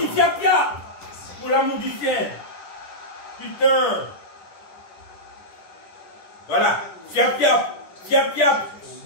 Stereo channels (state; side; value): late; right; 10 ms